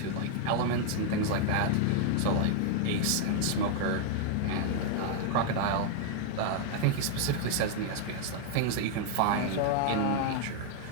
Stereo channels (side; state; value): both; different; correlation 0.00